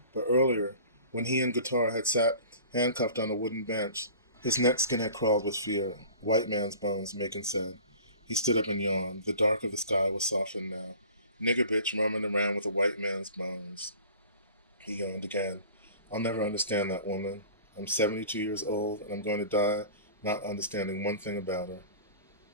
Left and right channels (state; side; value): inverted; both; correlation -0.43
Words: But earlier, when he and Guitar had sat handcuffed on a wooden bench, his neck skin had crawled with fear. White man's bones, Macon said. He stood up and yawned. The dark of the sky was softened now. Nigger bitch roaming around with a white man's bones. He yawned again. I'll never understand that woman. I'm 72 years old, and I'm going to die not understanding one thing about her.